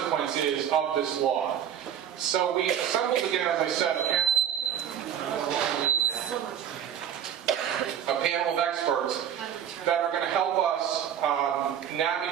is of this law. So we assembled again, as I said, a panel of experts that are going to help us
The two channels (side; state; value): left; quieter; 9.5 dB